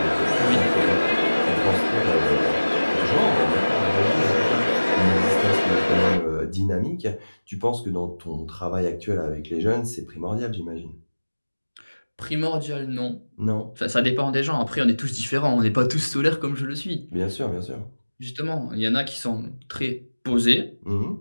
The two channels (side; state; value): both; inverted; correlation -1.00